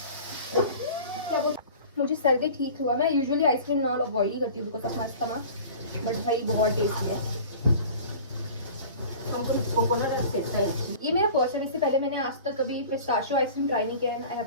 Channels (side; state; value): both; inverted; correlation -0.41